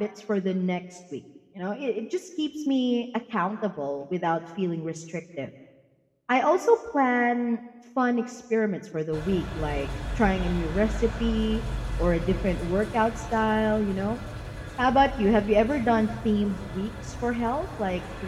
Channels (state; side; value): identical; both; correlation 1.00